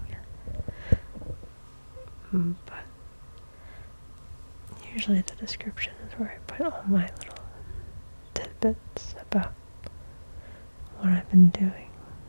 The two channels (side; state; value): both; inverted; correlation -1.00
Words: But usually the description is where I put all my little tidbits about what I've been doing,